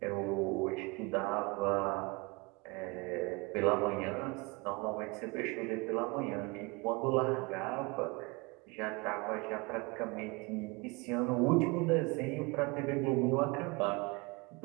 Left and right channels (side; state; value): left; quieter; 26.9 dB